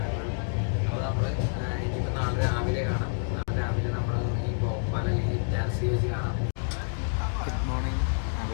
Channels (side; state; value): right; silent; digital silence